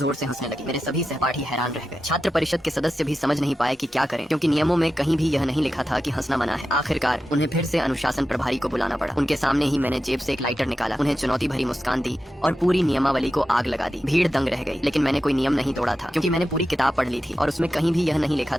से हंसने लगी। मेरे सभी सहपाठी हैरान रह गए। छात्र परिषद के सदस्य भी समझ नहीं पाए कि क्या करें, क्योंकि नियमों में कहीं भी यह नहीं लिखा था कि हंसना मना है। आखिरकार उन्हें फिर से अनुशासन प्रभारी को बुलाना पड़ा। उनके सामने ही मैंने जेब से एक लाइटर निकाला, उन्हें चुनौती भरी मुस्कान दी और पूरी नियमावली को आग लगा दी। भीड़ दंग रह गई, लेकिन मैंने कोई नियम नहीं तोड़ा था, क्योंकि मैंने पूरी किताब पढ़ ली थी और उसमें कहीं भी यह नहीं लिखा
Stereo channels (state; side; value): normal; both; correlation 0.91